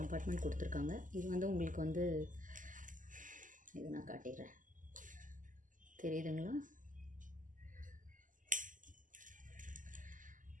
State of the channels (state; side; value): late; left; 0.38 ms